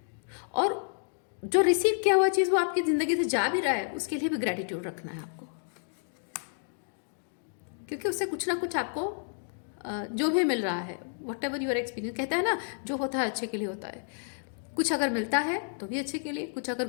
और जो रिसीव किया हुआ चीज़ वो आपकी ज़िंदगी से जा भी रहा है, उसके लिए भी ग्रैटिट्यूड रखना है आपको। क्योंकि उससे कुछ ना कुछ आपको जो भी मिल रहा है, वट एवर यूर एक्सपीरियंस, कहता है ना, जो होता है अच्छे के लिए होता है। कुछ अगर मिलता है तो भी अच्छे के लिए, कुछ अगर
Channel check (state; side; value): silent; right; digital silence